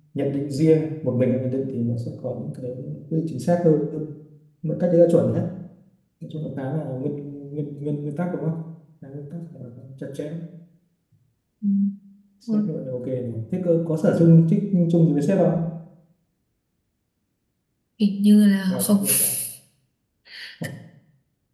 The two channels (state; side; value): identical; both; correlation 1.00